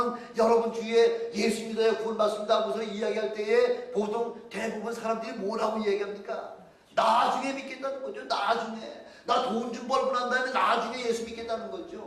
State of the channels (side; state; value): both; identical; correlation 1.00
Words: 여러분 주위에 예수 믿어야 구원 받습니다 하고서 이야기할 때에 보통 대부분 사람들이 뭐라고 이야기합니까? 나중에 믿겠다는 거죠. 나중에. 나 돈 좀 벌고 난 다음에 나중에 예수 믿겠다는